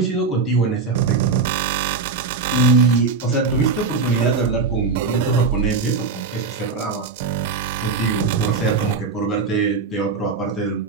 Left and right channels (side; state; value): left; quieter; 4.6 dB